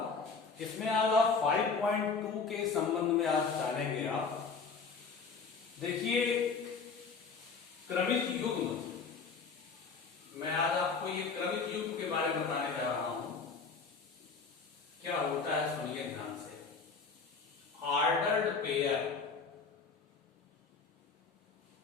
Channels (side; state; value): right; quieter; 5.0 dB